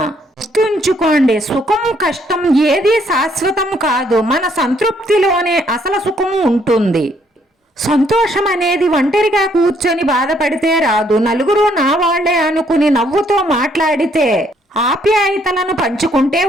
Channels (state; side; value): normal; both; correlation 0.68